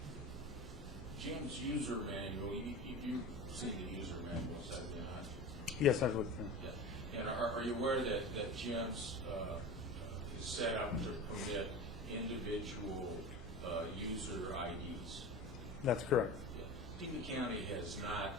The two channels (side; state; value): both; normal; correlation 0.30